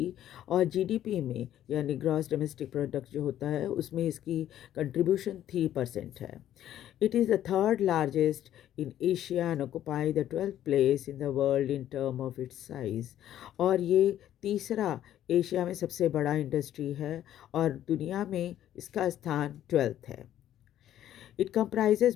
और जीडीपी में यानी ग्रॉस डोमेस्टिक प्रोडक्ट जो होता है उसमें इसकी कंट्रीब्यूशन 3% है। It is the third largest in Asia and occupy the 12th place in the world in term of its size. और ये तीसरा एशिया में सबसे बड़ा इंडस्ट्री है और दुनिया में इसका स्थान 12th है। It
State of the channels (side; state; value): right; quieter; 11.8 dB